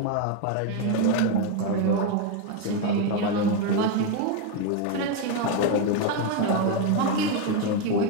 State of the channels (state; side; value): different; both; correlation 0.02